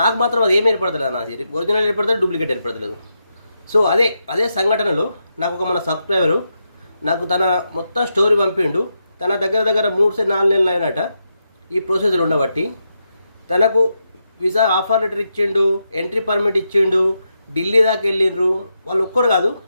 నాకు మాత్రం అది ఏమి ఏర్పడతలేదు, నా ఒరిజినల్ ఏర్పడతలేదు, డూప్లికేట్ ఏర్పడతలేదు. సో అదే సంఘటనలో నాకు ఒక మన సబ్స్క్రైబరు నాకు తన మొత్తం స్టోరీ పంపిండు. తన దగ్గర 3-4 నెలలు అయినట ఈ ప్రొసీజర్ ఉండబట్టి. తనకు వీసా ఆఫర్ లెటర్ ఇచ్చిండు, ఎంట్రీ పర్మిట్ ఇచ్చిండు, ఢిల్లీ దాకా వెళ్ళిండ్రు. వాళ్ళు ఒక్కరు కాదు,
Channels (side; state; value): both; inverted; correlation -0.85